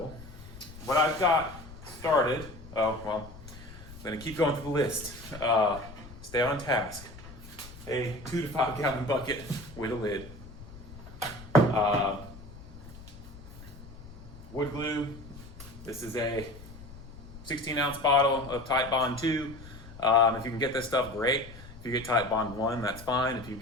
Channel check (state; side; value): noise; left; rumble, 16 dB below the sound